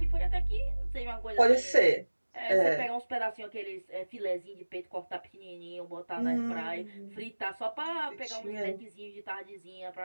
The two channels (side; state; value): both; inverted; correlation -1.00